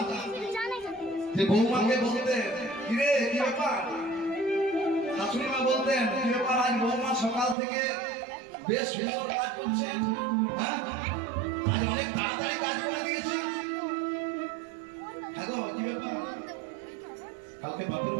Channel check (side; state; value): left; drops out; at 7.6 s